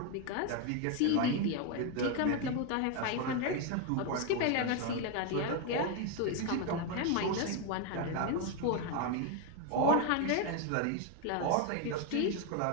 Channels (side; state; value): both; different; correlation 0.01